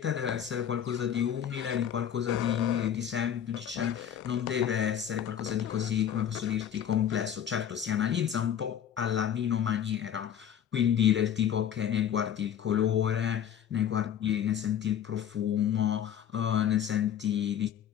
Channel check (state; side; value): quieter; right; 9.4 dB